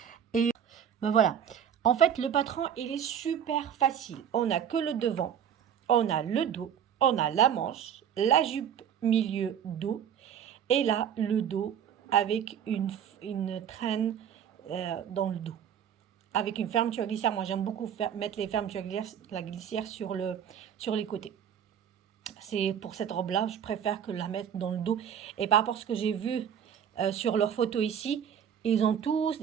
Et ben voilà. En fait, le patron, il est super facile. On n'a que le devant, on a le dos, on a la manche, la jupe milieu dos, et là, le dos avec une traîne dans le dos. Avec une fermeture glissière. Moi, j'aime beaucoup mettre les fermetures glissière sur les côtés. C'est pour cette robe-là, je préfère que la mettre dans le dos. Et par rapport à ce que j'ai vu sur leurs photos ici, ils ont tous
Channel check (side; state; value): left; quieter; 8.7 dB